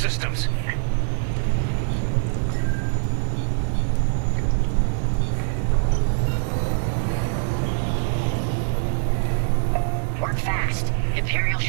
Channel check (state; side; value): silent; left; digital silence